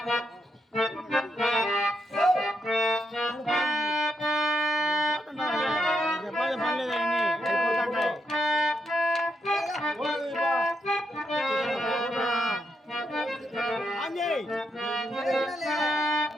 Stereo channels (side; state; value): both; normal; correlation 0.81